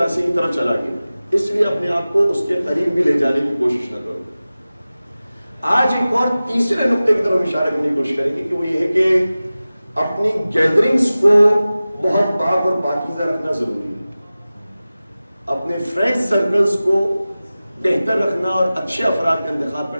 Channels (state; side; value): inverted; both; correlation -0.96